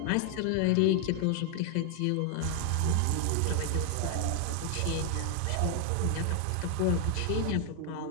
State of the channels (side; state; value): both; different; correlation 0.00